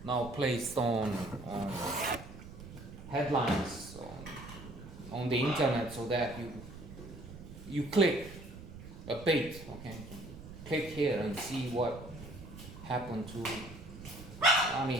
now placed on headlines on the internet so that you click a bait, okay? Click here and see what happened to Armie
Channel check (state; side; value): noise; right; rumble, 14 dB below the sound